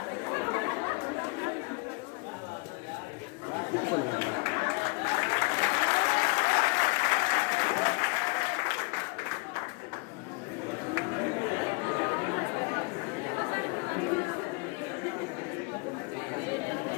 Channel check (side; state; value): right; quieter; 29.7 dB